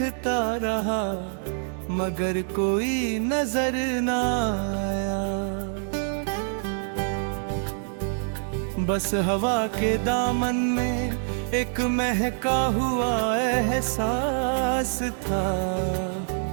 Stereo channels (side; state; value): left; silent; digital silence